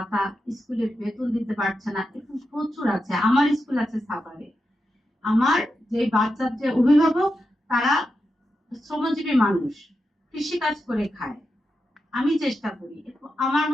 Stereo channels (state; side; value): normal; both; correlation 0.88